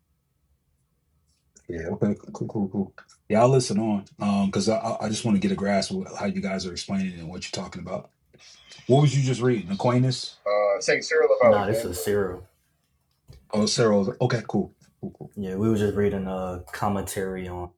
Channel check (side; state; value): both; identical; correlation 1.00